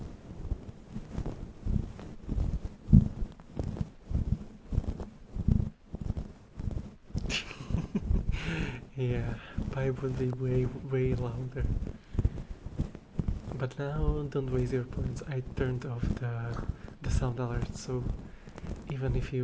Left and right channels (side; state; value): both; identical; correlation 1.00